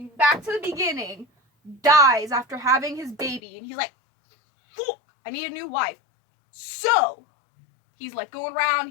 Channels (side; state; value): right; drops out; at 3.4 s